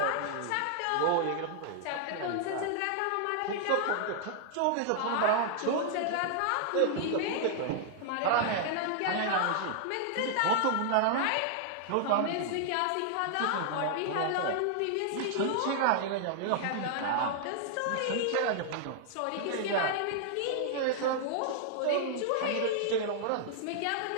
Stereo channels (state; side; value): different; both; correlation -0.01